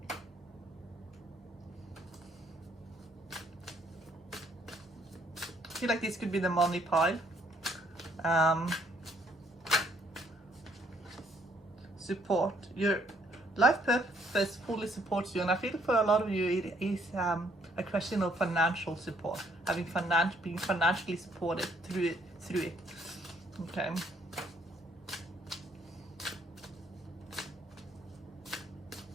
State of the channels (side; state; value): both; normal; correlation 0.67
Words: I feel like this could be the money pile. Support. Your life purpose fully supports you, and I feel for a lot of you it is a question of financial support, being financially supported through it. Okay.